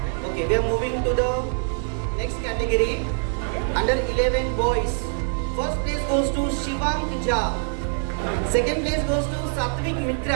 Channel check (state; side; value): silent; left; 55 dB below the other